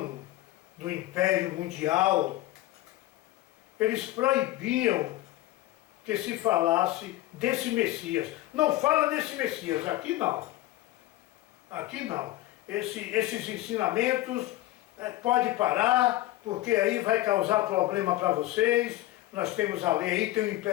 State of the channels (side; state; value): right; quieter; 16.3 dB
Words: do Império Mundial, eles proibiam que se falasse desse Messias. Não fala desse Messias, aqui não. Aqui não. Esses ensinamentos pode parar, porque aí vai causar problema para vocês. Nós temos a lei aí, tem o